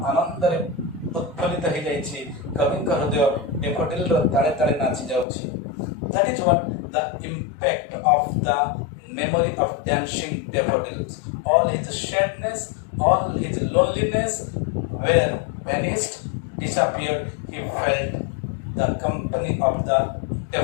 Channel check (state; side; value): drops out; right; at 5.2 s